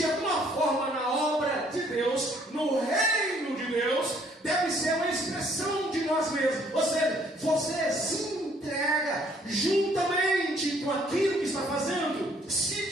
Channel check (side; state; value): both; normal; correlation 0.63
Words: alguma forma na obra de Deus, no reino de Deus, deve ser uma expressão de nós mesmos. Ou seja, você se entrega juntamente com aquilo que está fazendo. Se